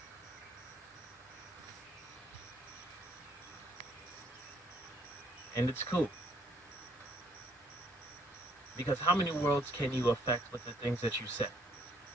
And it's cool. Because how many worlds can you affect with the things that you say?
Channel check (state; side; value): normal; both; correlation 0.66